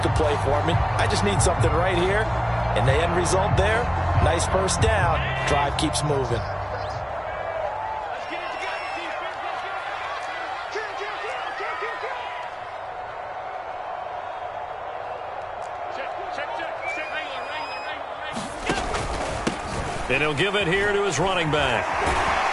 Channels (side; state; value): both; identical; correlation 1.00